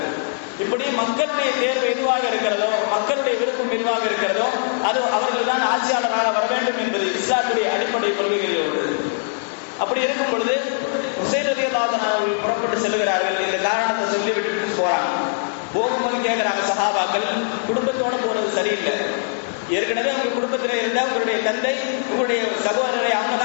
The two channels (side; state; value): right; silent; digital silence